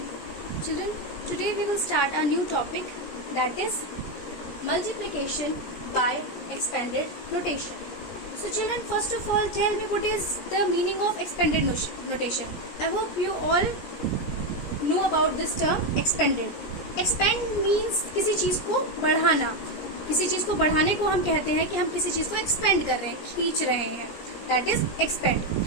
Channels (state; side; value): late; right; 17 ms